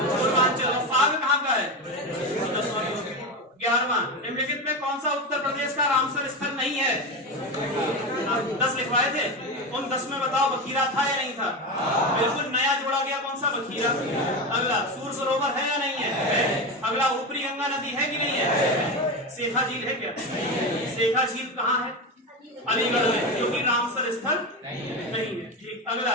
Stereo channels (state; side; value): normal; both; correlation 0.18